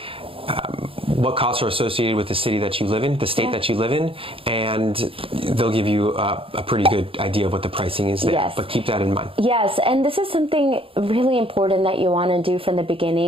what costs are associated with the city that you live in, the state that you live in, and they'll give you a pretty good idea of what the pricing is there. Yes. But keep that in mind. Yes, and this is something really important that you want to do from the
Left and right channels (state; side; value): late; left; 0.27 ms